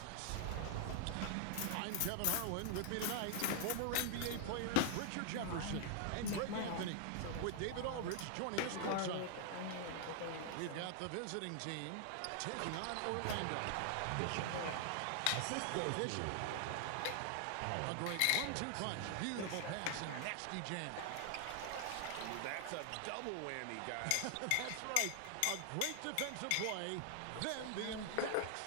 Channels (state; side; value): different; both; correlation 0.00